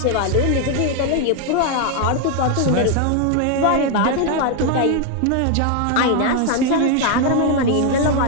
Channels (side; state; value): both; different; correlation 0.00